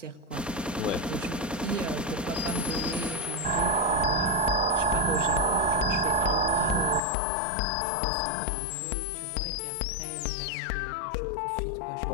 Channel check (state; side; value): drops out; right; at 7.0 s